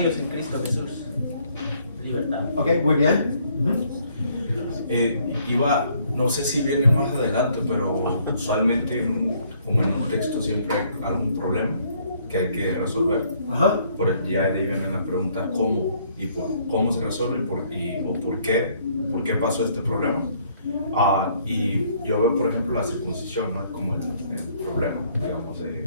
en Cristo Jesús? Libertad. Ok, muy bien. No sé si viene más adelante, pero usualmente como en un texto siempre hay algún problema que hay que resolver. Ajá. Ya de ahí viene la pregunta cómo y cómo se resuelve o por qué pasó este problema. Y yo veo, por ejemplo, la circuncisión, ¿no? Como el problema, digamos,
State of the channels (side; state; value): both; inverted; correlation -0.65